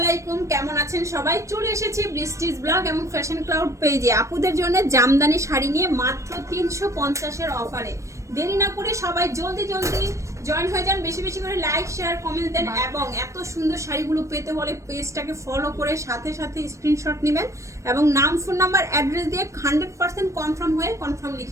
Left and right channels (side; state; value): left; late; 0.15 ms